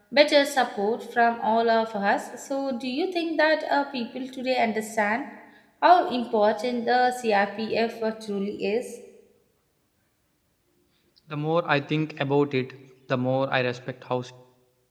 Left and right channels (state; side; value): identical; both; correlation 1.00